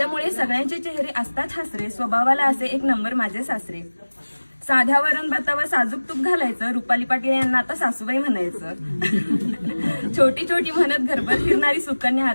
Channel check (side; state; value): both; inverted; correlation -1.00